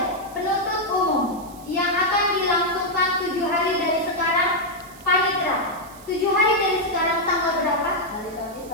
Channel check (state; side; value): noise; right; hiss, 22 dB below the sound